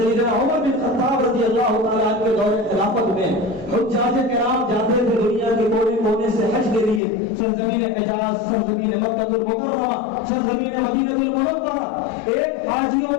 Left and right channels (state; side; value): drops out; right; at 7.0 s